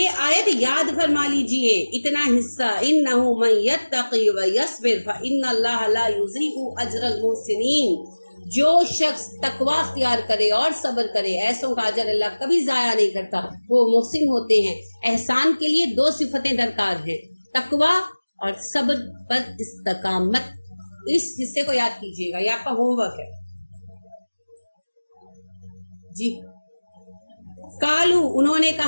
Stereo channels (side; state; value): both; inverted; correlation -1.00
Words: آیت یاد فرما لیجئے، اتنا حصہ. انہ من یتقی ویصبر فان اللہ لا یضیع اجر المحسنین. جو شخص تقوی اختیار کرے اور صبر کرے، ایسوں کا اجر اللہ کبھی ضائع نہیں کرتا، وہ محسن ہوتے ہیں. احسان کے لیے 2 صفتیں درکار ہیں، تقوی اور صبر پر استقامت. اس حصے کو یاد کیجئے گا، یہ آپ کا ہوم ورک ہے. جی قالو، انہوں نے